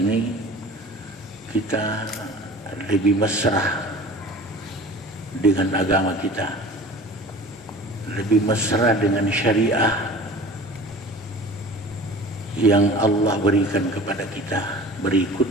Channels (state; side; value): normal; both; correlation 0.41